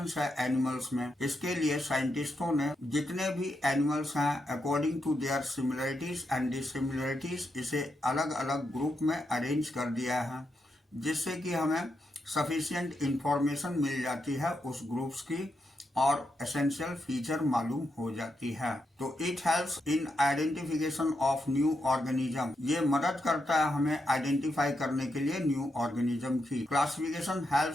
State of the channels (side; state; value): both; normal; correlation 0.83